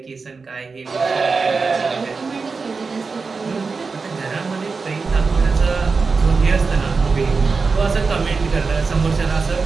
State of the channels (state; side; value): quieter; left; 4.5 dB